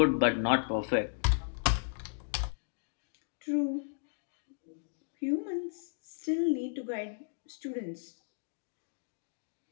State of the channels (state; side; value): silent; right; digital silence